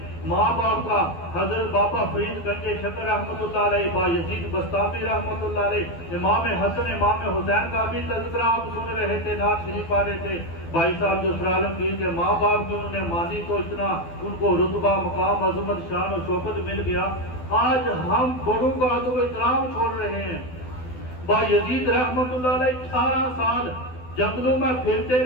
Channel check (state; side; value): late; right; 12 ms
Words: ماں باپ کا۔ حضرت بابا فرید گنج شکر رحمۃ اللہ علیہ، با یزید بستامی رحمۃ اللہ علیہ، امام حسن امام حسین کا بھی تذکرہ آپ سن رہے تھے، نعت شریف پڑھ رہے تھے۔ بھائی صاحب جو سر عالمگیر کے ماں باپ کی انہوں نے مانی تو اتنا ان کو رتبہ مقام عظمت شان و شوکت مل گیا۔ آج ہم بڑوں کا ادب و احترام چھوڑ رہے ہیں۔ با یزید رحمۃ اللہ علیہ 18 سال جنگلوں میں پھرتے